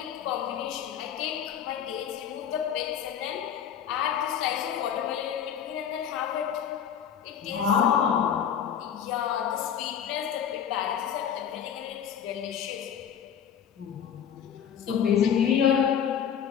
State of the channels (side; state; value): right; quieter; 8.6 dB